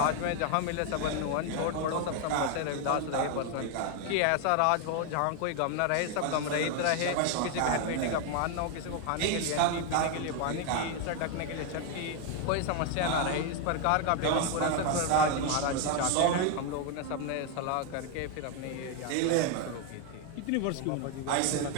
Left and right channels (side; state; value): both; different; correlation 0.01